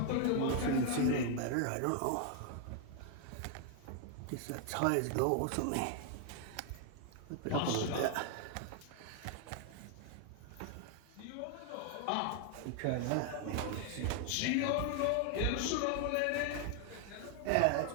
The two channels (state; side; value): different; both; correlation 0.00